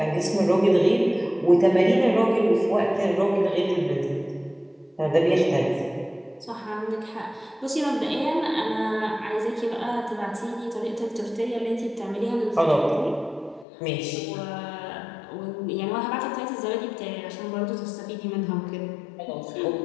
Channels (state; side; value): drops out; right; at 13.7 s